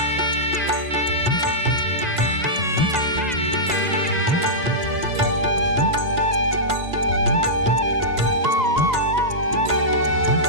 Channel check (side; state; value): left; late; 1.9 ms